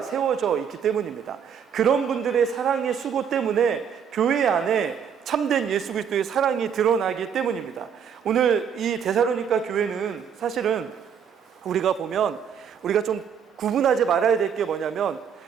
세워져 있기 때문입니다. 그런 분들의 사랑의 수고 때문에 교회 안에 참된 예수 그리스도의 사랑이 드러나기 때문입니다. 오늘 이 데살로니가 교회는 사실은 우리가 보면 우리가 좀 구분하지 말아야 될 게 뭐냐면,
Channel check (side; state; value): left; quieter; 7.6 dB